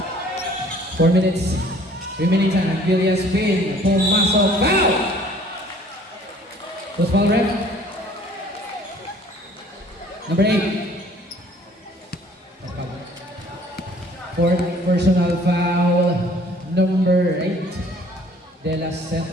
4 minutes. Remaining time. Villas spin. Pumasok. Foul! Who's foul ref? Number 8. Fourth personal foul. Number 8. De La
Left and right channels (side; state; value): both; normal; correlation 0.55